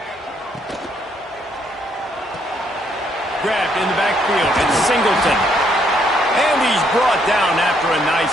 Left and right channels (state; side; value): normal; both; correlation 0.71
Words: Grabbed in the backfield, it's Singleton. And he's brought down after a